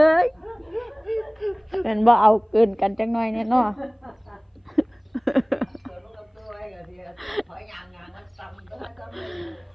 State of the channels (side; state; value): both; identical; correlation 1.00